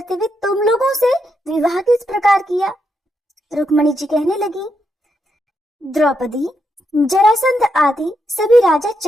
हुए तुम लोगों से विवाह किस प्रकार किया। रुक्मणी जी कहने लगी, द्रौपदी, जरासंध आदि सभी राजा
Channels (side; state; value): both; normal; correlation 0.81